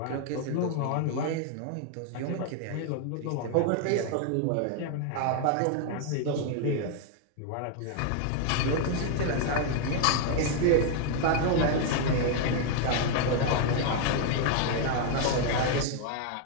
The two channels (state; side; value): different; both; correlation 0.00